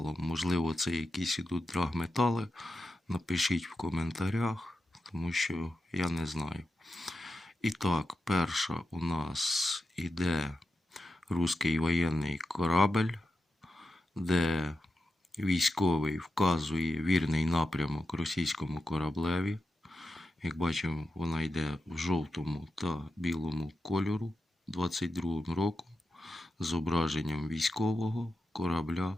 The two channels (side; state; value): both; normal; correlation 0.89